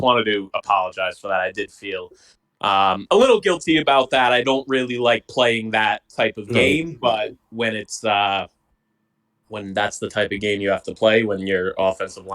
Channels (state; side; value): identical; both; correlation 1.00